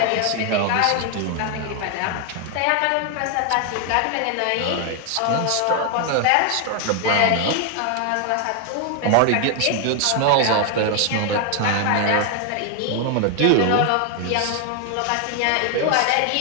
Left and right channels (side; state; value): both; different; correlation 0.01